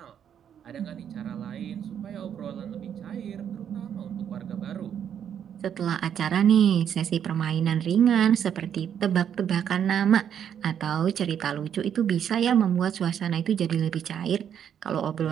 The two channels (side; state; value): left; quieter; 8.8 dB